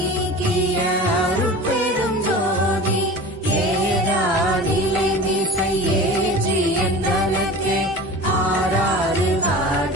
அருட்பெருஞ்சோதி ஏரா நிலை மிசை ஏற்றி என்றனக்கே ஆறாறு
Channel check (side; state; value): both; normal; correlation 0.35